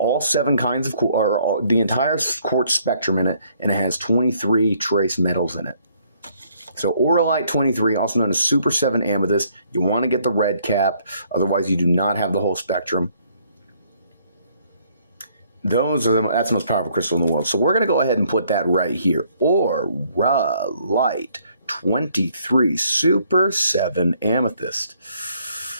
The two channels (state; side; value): inverted; both; correlation -0.66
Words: 7 kinds of the entire quartz spectrum in it, and it has 23 trace metals in it. So Auralite 23, also known as Super 7 Amethyst, you want to get the red cap, otherwise you do not have the whole spectrum. That's the most powerful crystal in the world. So we're going to go ahead and put that right here. Auralite 23 Super 7 Amethyst.